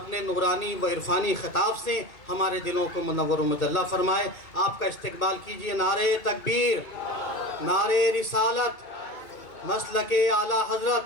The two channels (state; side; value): late; right; 2.3 ms